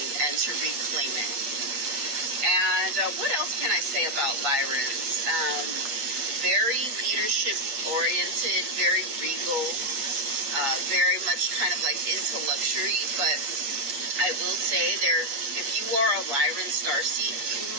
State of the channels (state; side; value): late; left; 8.4 ms